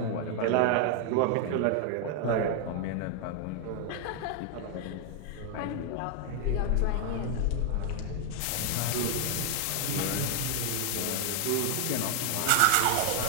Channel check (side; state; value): both; different; correlation 0.00